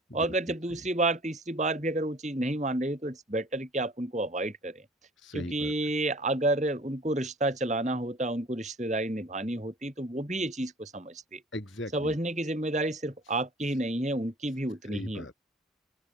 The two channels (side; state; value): both; normal; correlation 0.48